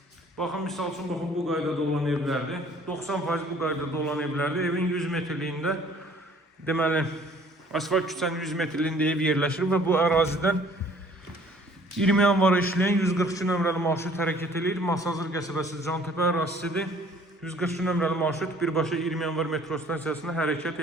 Baxın, misal üçün, baxın, bu qaydada olan evlərdir. 90% bu qaydada olan evlərdir. Evin 100 metrliyində, deməli, asfalt küçənin 100 metrliyində ev yerləşir və bu ərazidən 20 yanvara işləyən 142 nömrəli marşrut hərəkət edir. Masazır qəsəbəsi Cantepe ərazisidir. 142 nömrəli marşrut birbaşa 20 yanvar metro stansiyasına hərəkət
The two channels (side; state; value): both; normal; correlation 0.55